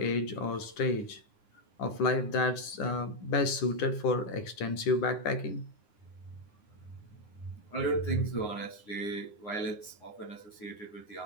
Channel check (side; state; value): right; late; 9.7 ms